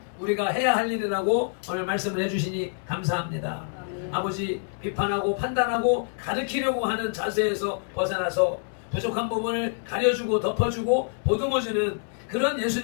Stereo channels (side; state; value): right; silent; 61 dB below the other